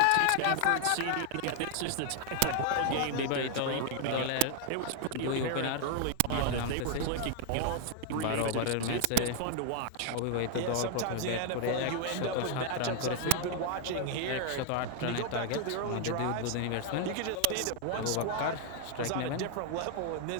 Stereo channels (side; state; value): both; different; correlation 0.00